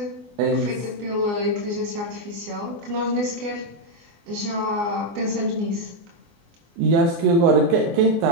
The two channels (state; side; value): late; left; 24 ms